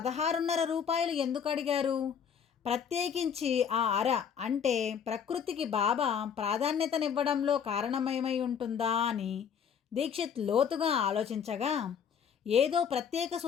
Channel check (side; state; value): right; quieter; 7.5 dB